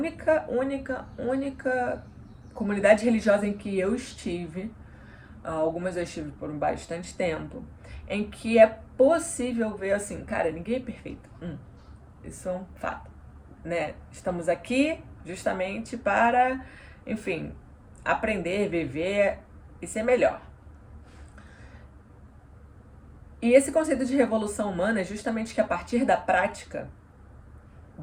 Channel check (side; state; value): both; identical; correlation 1.00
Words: comunidade religiosa em que eu estive. Algumas eu estive por bastante tempo, em que é possível ver assim, cara, ninguém é perfeito. Isso é um fato, né? Estamos aqui justamente para, enfim, aprender, viver e ser melhor. E esse conceito de revolução humana é justamente que a partir da prática